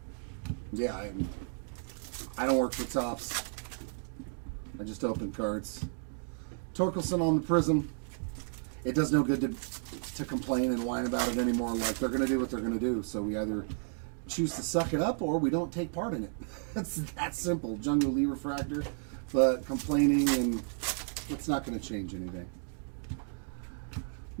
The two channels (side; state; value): left; silent; 56 dB below the other